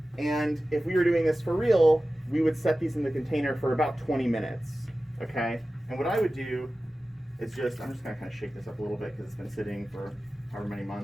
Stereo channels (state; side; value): normal; both; correlation 0.95